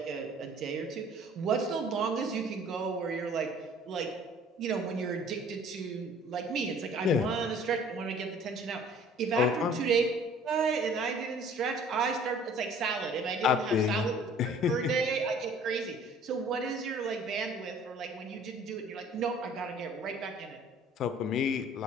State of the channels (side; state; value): both; normal; correlation 0.52